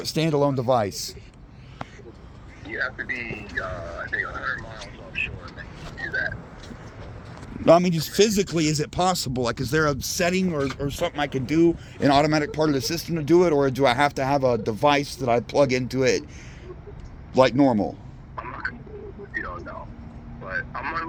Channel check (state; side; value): identical; both; correlation 1.00